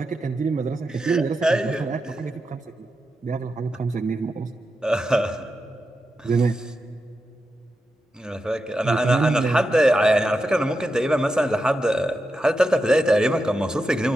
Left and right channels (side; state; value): both; normal; correlation 0.88